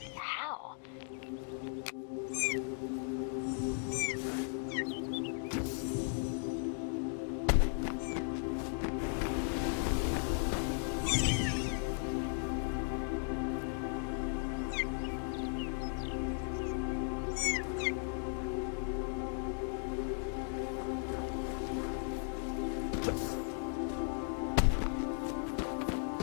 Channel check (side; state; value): right; silent; 53 dB below the other